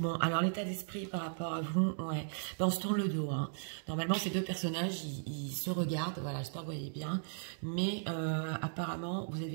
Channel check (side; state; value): left; silent; digital silence